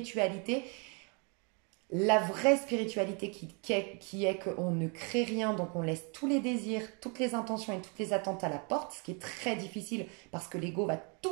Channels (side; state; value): left; quieter; 35.0 dB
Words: La vraie spiritualité qui est qu'on ne crée rien, donc on laisse tous les désirs, toutes les intentions et toutes les attentes à la porte, ce qui est très difficile parce que l'ego va